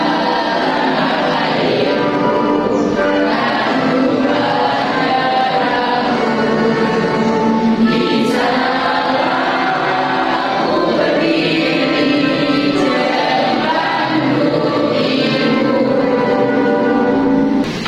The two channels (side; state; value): both; identical; correlation 1.00